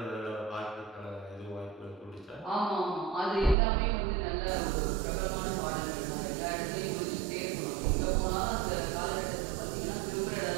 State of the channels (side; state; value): left; drops out; at 3.6 s